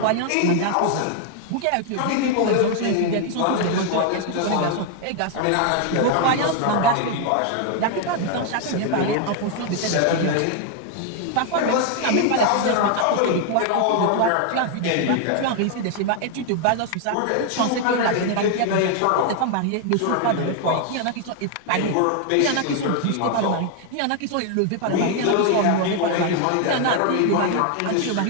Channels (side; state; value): both; different; correlation 0.00